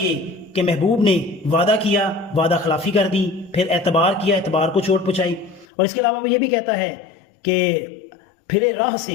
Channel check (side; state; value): right; drops out; at 5.7 s